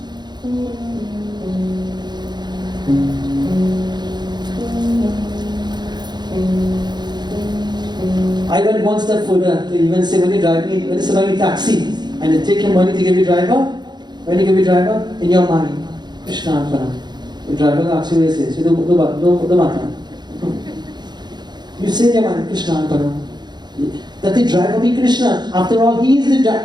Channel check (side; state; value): left; late; 0.21 ms